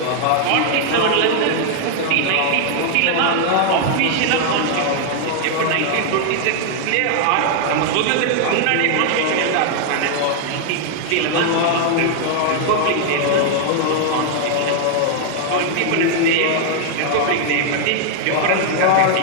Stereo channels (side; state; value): both; different; correlation 0.00